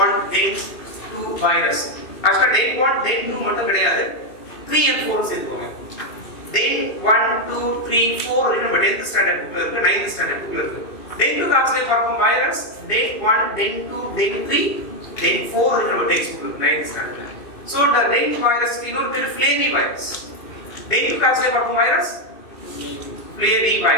1, dengue 2 virus. Actually dengue 1, dengue 2 மட்டும் கிடையாது, 3 and 4 சேர்த்துக்கோங்க. dengue 1, 2, 3, 4 நம்ம 10th standard புக்ல இருக்கு, 9th standard புக்ல இருக்கு. dengue காய்ச்சலை பரப்பும் virus dengue 1, dengue 2, dengue 3, dengue 4 நம்ம டெக்ஸ்ட் புக்ல இருக்கு 9th ஸ்டாண்டர்ட்ல. சோ the dengue வைரஸ் இன்னொரு பேர் ஃப்ளேவி வைரஸ். dengue காய்ச்சலை பரப்பும் வைரஸ் ஃப்ளேவி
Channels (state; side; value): late; right; 2.5 ms